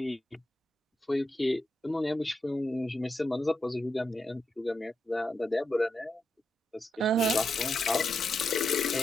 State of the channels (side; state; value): both; normal; correlation 0.84